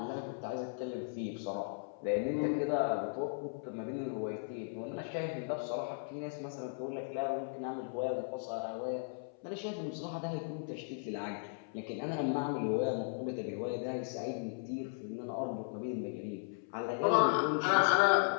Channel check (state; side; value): silent; right; 53 dB below the other